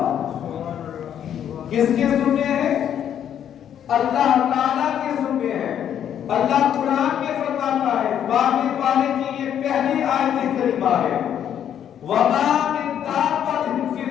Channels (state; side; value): quieter; right; 9.6 dB